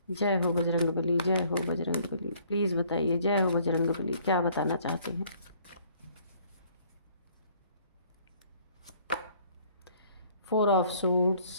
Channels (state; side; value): inverted; both; correlation -0.60